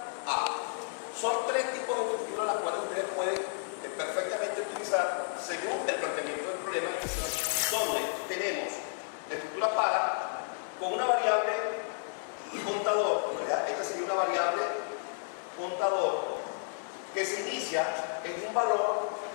a. Son tres tipos de estructuras las cuales ustedes pueden perfectamente utilizar según el planteamiento del problema, donde tenemos la estructura para con una variable contador, ¿verdad? Esta sería una variable contador que se inicia en un valor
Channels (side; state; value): right; silent; digital silence